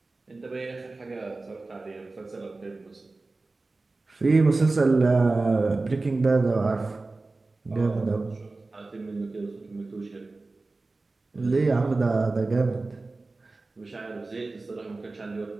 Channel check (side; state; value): left; quieter; 3.4 dB